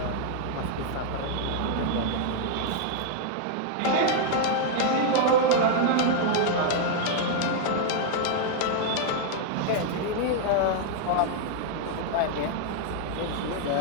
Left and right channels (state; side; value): different; both; correlation -0.01